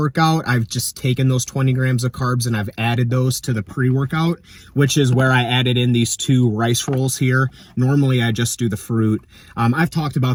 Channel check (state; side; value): identical; both; correlation 1.00